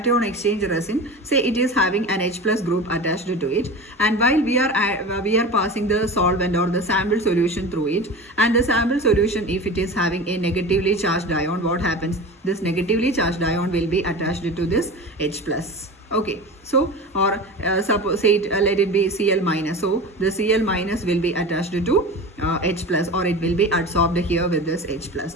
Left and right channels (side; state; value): both; normal; correlation 0.31